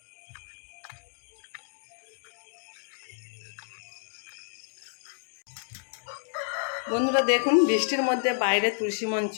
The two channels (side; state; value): right; silent; digital silence